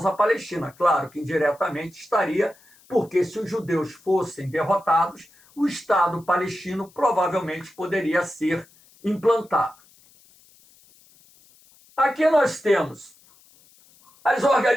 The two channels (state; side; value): noise; left; hiss, 29 dB below the sound